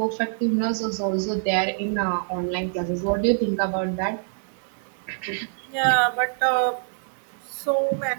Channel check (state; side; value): silent; left; digital silence